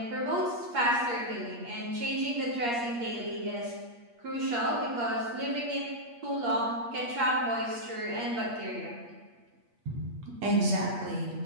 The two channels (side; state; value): left; late; 8.5 ms